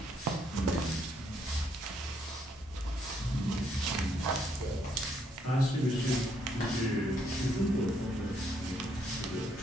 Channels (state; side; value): normal; both; correlation 0.72